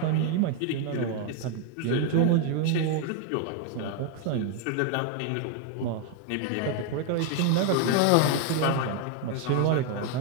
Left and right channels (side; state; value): both; different; correlation 0.01